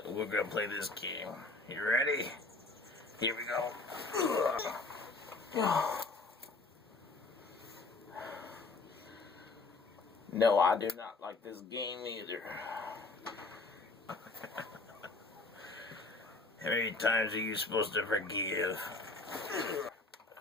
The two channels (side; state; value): right; quieter; 3.4 dB